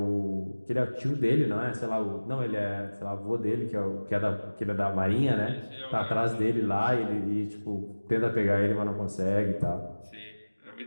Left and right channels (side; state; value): both; inverted; correlation -1.00